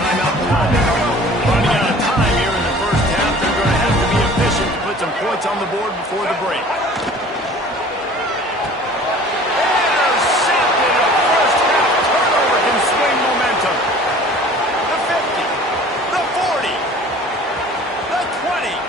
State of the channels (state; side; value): normal; both; correlation 0.47